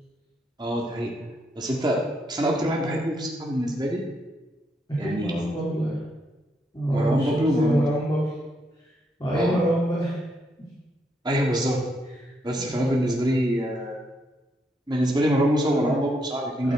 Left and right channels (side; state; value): both; normal; correlation 0.77